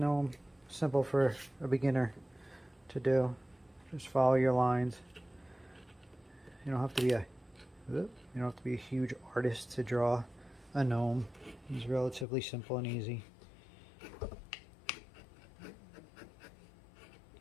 simple for a beginner to do. Just follow your lines. You don't have to be a huge artist to draw a gnome. It's relatively simple and easy.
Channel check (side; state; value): right; drops out; at 12.2 s